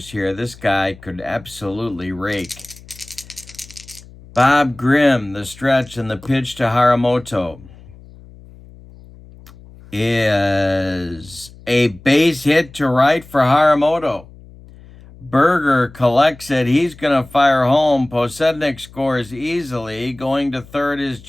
here, this guy could absolutely rake. Bob Grimm, the stretch and the pitch to Haramoto, is a base hit to right for Haramoto. Berger collects it. He's going to fire home. Podsednik scores easily. Going to third is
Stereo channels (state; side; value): noise; left; hum, 21 dB below the sound